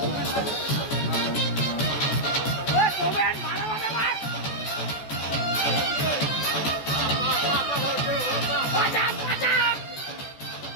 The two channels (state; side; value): late; right; 14 ms